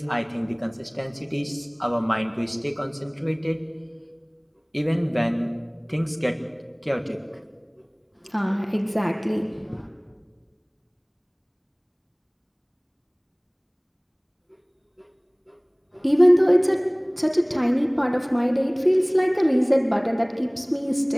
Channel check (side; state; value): both; identical; correlation 1.00